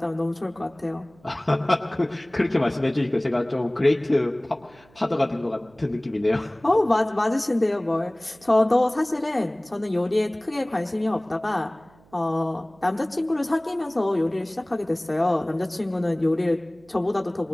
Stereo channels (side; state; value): right; noise; hum, 29 dB below the sound